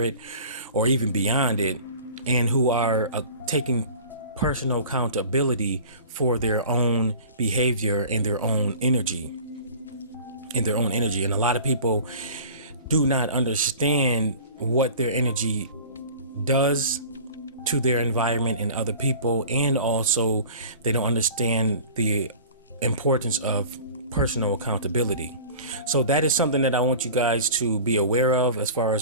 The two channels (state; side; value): inverted; both; correlation -0.41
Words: it or even beyond it, and who are taking personal accountability for their own behavior and their own energy. And a lot of people do not understand what their energy does to their environment and other people, and also they don't understand the importance of personal accountability. So that is something that I want you guys to be aware of, as far